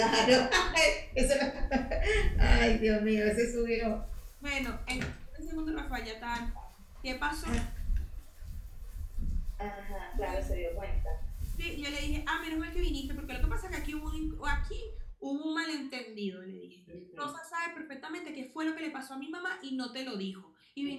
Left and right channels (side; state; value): both; identical; correlation 1.00